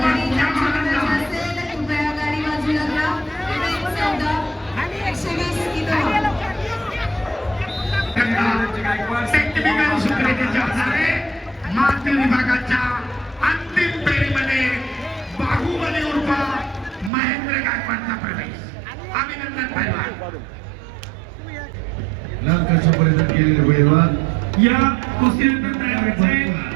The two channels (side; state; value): left; drops out; at 17.1 s